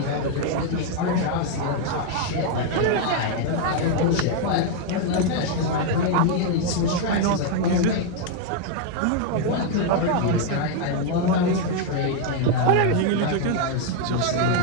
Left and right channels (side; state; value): both; different; correlation 0.00